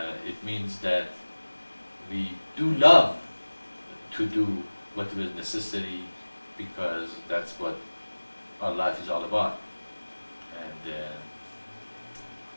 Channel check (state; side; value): inverted; both; correlation -1.00